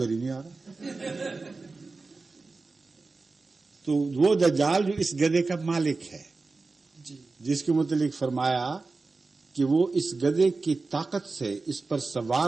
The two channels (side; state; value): left; quieter; 3.8 dB